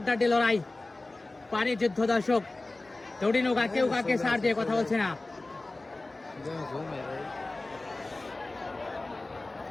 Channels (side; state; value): right; quieter; 3.0 dB